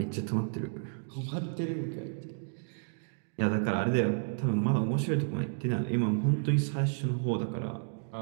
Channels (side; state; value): left; silent; digital silence